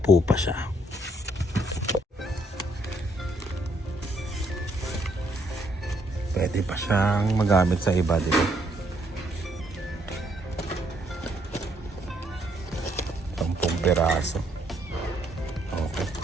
pa siya. Pwede pa siyang magamit sa iba, dito. piraso. Okay.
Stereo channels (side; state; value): both; normal; correlation 0.71